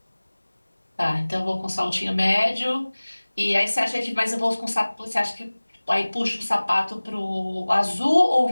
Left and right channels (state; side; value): inverted; both; correlation -1.00